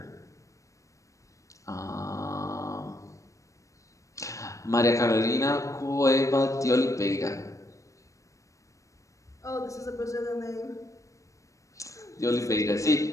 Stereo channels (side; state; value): right; late; 0.15 ms